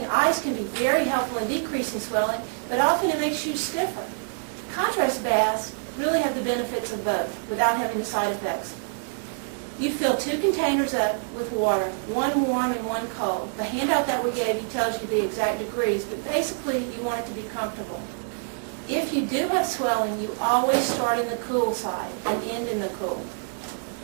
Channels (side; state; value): left; silent; 61 dB below the other